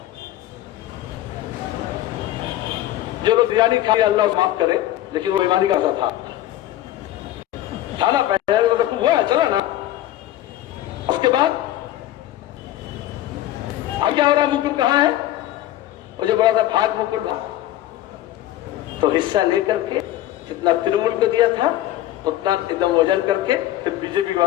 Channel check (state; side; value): quieter; right; 13.9 dB